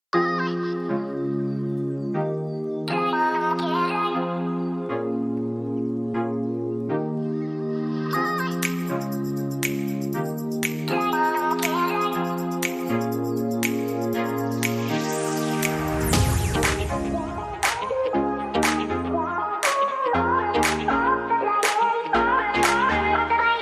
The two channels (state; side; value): identical; both; correlation 1.00